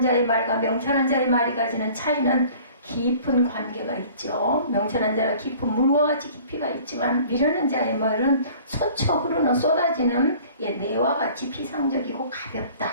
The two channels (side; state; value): both; inverted; correlation -0.49